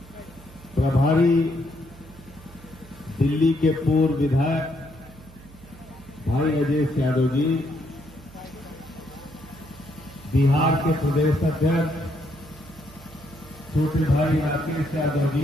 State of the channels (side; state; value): right; noise; hum, 21 dB below the sound